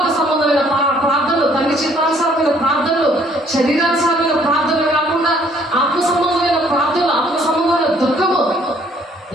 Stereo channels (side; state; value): both; normal; correlation 0.62